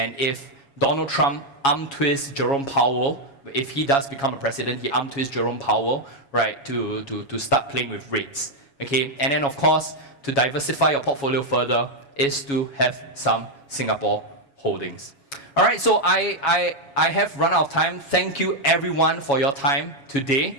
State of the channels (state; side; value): late; right; 7.2 ms